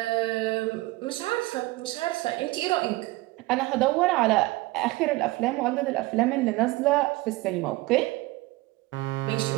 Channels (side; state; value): left; quieter; 20.5 dB